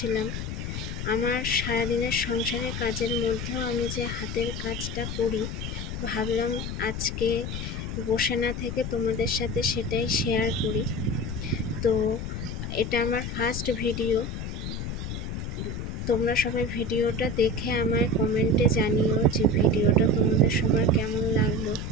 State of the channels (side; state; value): left; noise; rumble, 5 dB below the sound